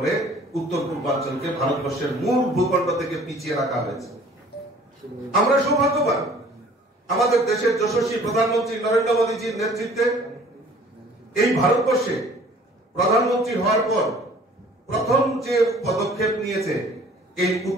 উত্তর পূর্বাঞ্চলকে ভারতবর্ষের মূল ভূখণ্ড থেকে পিছিয়ে রাখা হয়েছে। আমরা সৌভাগ্যবান, আমাদের দেশের যশস্বী প্রধানমন্ত্রী নরেন্দ্র মোদীজির নেতৃত্বে এই ভারতবর্ষে প্রধানমন্ত্রী হওয়ার পর প্রথম যে পদক্ষেপ নিয়েছে এই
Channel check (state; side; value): normal; both; correlation 0.52